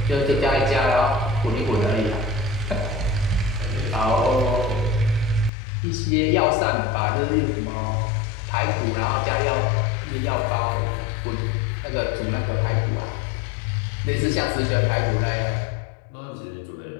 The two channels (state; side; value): drops out; right; at 5.5 s